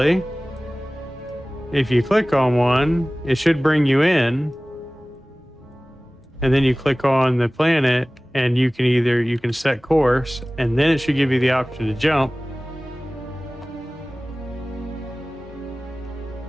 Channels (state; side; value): normal; both; correlation 0.98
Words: if you click on one, it should bring you in, and then you click on the planet, and you can set course, and then it should give you the option to jump.